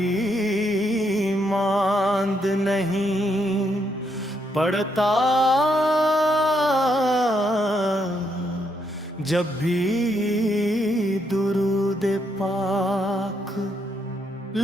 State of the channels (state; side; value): normal; both; correlation 0.76